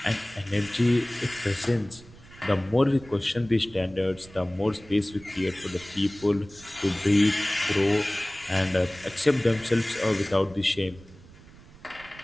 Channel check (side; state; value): right; noise; rumble, 21 dB below the sound